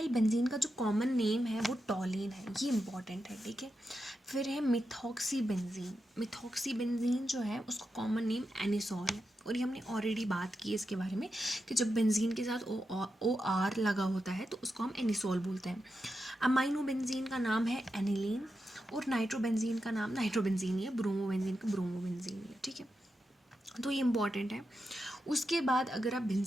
बेंजीन का जो कॉमन नेम है वो टॉलिन है, ये इंपॉर्टेंट है. ठीक है, फिर है मिथॉक्सी बेंजीन. मिथॉक्सी बेंजीन जो है उसका कॉमन नेम एनिसॉल है, और ये हमने ऑलरेडी बात की है इसके बारे में कि जब बेंजीन के साथ ओ आर लगा होता है तो उसको हम एनिसॉल बोलते हैं. अमाइनो बेंजीन का नाम है एनिलीन, और नाइट्रोबेंजीन का नाम नाइट्रोबेंजीन ही है, ब्रोमोबेंजीन का ब्रोमोबेंजीन ही है. ठीक है, तो ये इंपॉर्टेंट है. उसके बाद अगर आप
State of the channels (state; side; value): normal; both; correlation 0.88